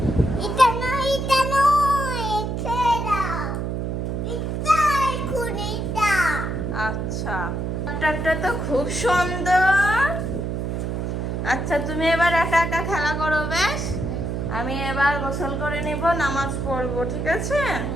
এটা নয়, ছেড়ে দাও। এটা এখন এটা। আচ্ছা, ডক্টরটা তো খুব সুন্দর। আচ্ছা, তুমি এবার একা একা খেলা করো, বেশ। আমি এবার গোসল করে নিব, নামাজ পড়বো, ঠিক আছে?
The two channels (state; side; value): noise; right; hum, 2 dB below the sound